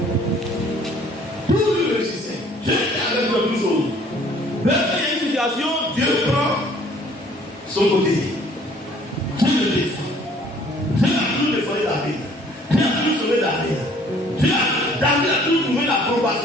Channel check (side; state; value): both; normal; correlation 0.57